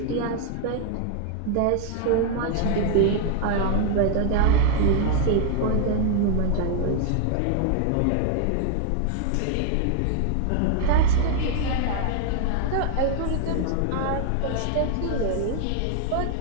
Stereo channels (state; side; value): different; both; correlation 0.00